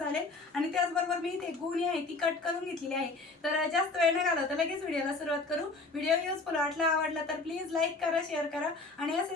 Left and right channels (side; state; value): right; quieter; 3.5 dB